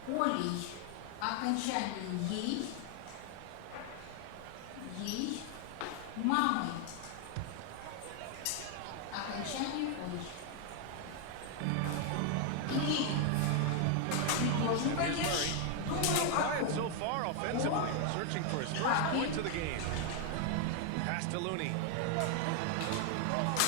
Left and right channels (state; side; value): different; both; correlation 0.00